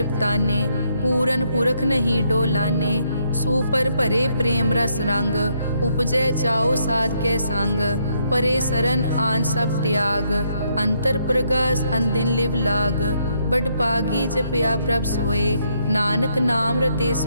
पूरन पुरख नहीं डोलाने। सुपर भरे प्रेम रस रंग, उपजै चाओ साध के संग। परे सरन आन सब त्याग, अंतर प्रगास अनदिन लिव लाग। बड़ पागी जपया प्रभ सोए, नानक नाम रते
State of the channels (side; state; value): both; inverted; correlation -0.74